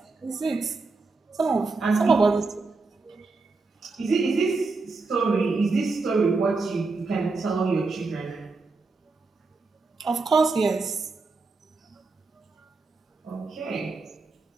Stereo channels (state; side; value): quieter; left; 3.9 dB